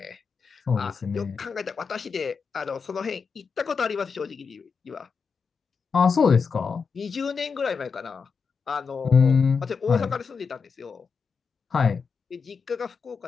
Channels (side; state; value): right; quieter; 5.5 dB